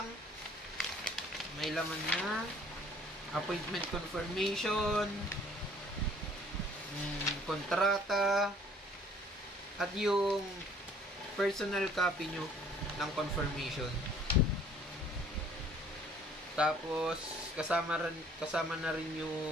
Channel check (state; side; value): normal; both; correlation 0.56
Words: na appointment confirmation, kontrata, at yung personal copy nyo ng confirmation. Tapos kasama na rin